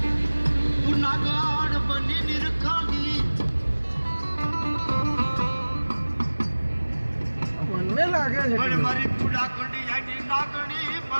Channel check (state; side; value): inverted; both; correlation -1.00